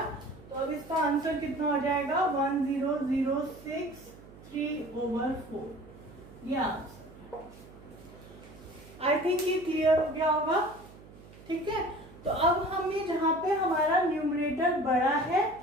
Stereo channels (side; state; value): right; noise; hum, 20 dB below the sound